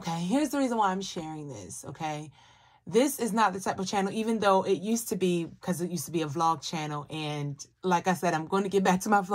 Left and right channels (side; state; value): both; identical; correlation 1.00